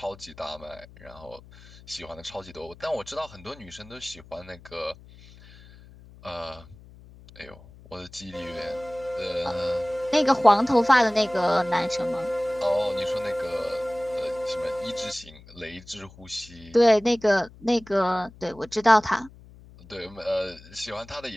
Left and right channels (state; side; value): noise; left; hum, 21 dB below the sound